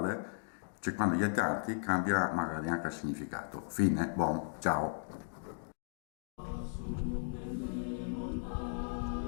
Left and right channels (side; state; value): right; silent; digital silence